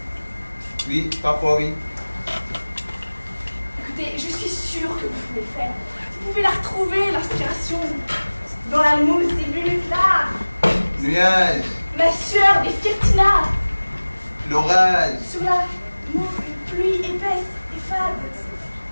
Oui, parfois oui. Écoutez, je suis sûre que vous pouvez le faire. Vous pouvez la retrouver, l'inspiration. Dans la mousse des minutes là. Nuage, Ma sueur des Firtina. l'orage. Sur la pluie épaisse et fade.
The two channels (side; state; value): both; inverted; correlation -1.00